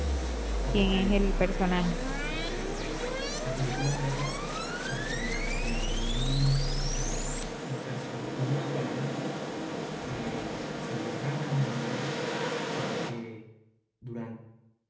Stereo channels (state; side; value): identical; both; correlation 1.00